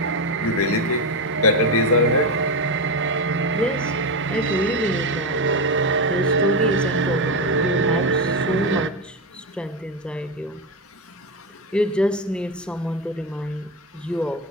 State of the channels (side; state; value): both; normal; correlation 0.12